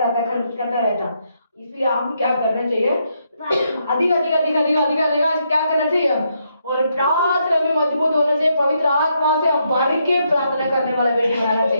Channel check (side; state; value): both; inverted; correlation -0.78